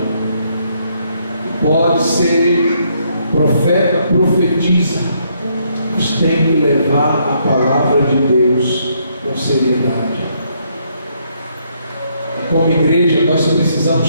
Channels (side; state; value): both; inverted; correlation -0.72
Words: Pode ser profeta, profetiza, mas tem que levar a palavra de Deus com seriedade. E como igreja, nós precisamos